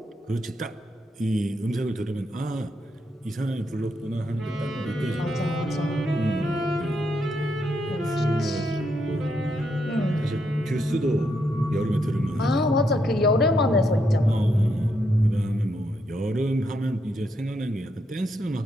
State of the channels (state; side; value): normal; both; correlation 0.79